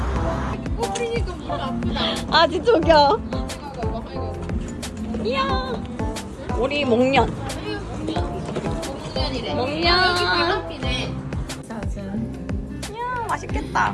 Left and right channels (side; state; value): both; identical; correlation 1.00